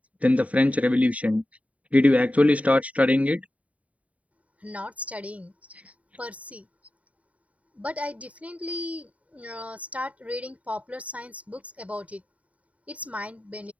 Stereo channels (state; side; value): late; left; 0.068 ms